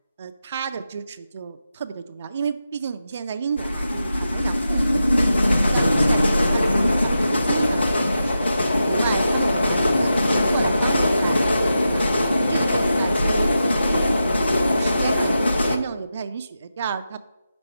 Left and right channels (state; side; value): inverted; both; correlation -0.89